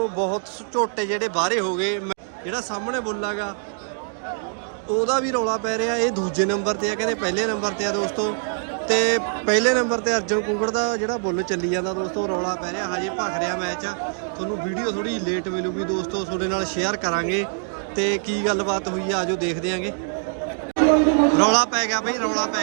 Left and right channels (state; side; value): silent; left; digital silence